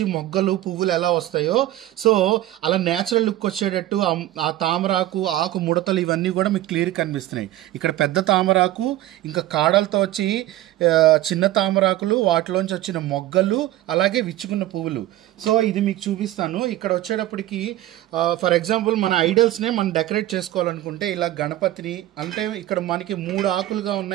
మొగ్గలు పువ్వులు ఎలా వస్తాయో, సో అలా న్యాచురల్ లుక్ వచ్చేటట్టు ఆ తామరాకు ఆకు ముడతలు ఇవన్నీ కూడా మీకు క్లియర్ కనిపిస్తున్నాయి. ఇక్కడ పెద్ద తామరాకు, ఇంకా కాడలతో వచ్చి చిన్న తామరాకులు, వాటిలోంచి వచ్చిన మొగ్గలు, అలాగే విచ్చుకున్న పువ్వులు. సో ఇది మీకు చూపిస్తాను. ఇక్కడ వచ్చేటప్పటికి ఫర్ ఎగ్జాంపుల్ మన ఐడల్స్నే మనం డెకరేట్ చేసుకోవాలనుకుంటే ఇలా గణపతిని, అంటే ఇక్కడ మనకి 3 ఆకులుగా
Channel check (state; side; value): quieter; left; 14.7 dB